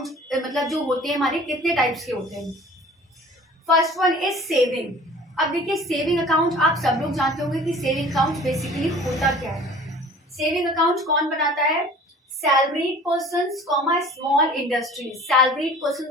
मतलब जो होते हैं हमारे कितने टाइप्स के होते हैं. First one is saving. अब देखिए, सेविंग अकाउंट आप सब लोग जानते होंगे कि सेविंग अकाउंट बेसिकली होता क्या है. सेविंग अकाउंट कौन बनाता है? Salaried person, small industries. Salaried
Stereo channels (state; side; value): normal; both; correlation 0.46